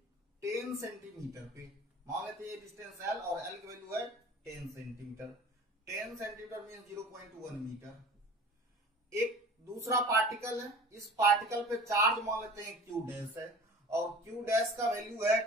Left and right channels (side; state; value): both; normal; correlation 0.41